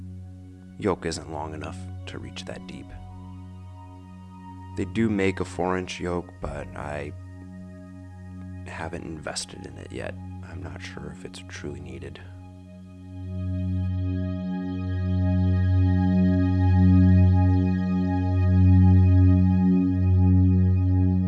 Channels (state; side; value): identical; both; correlation 1.00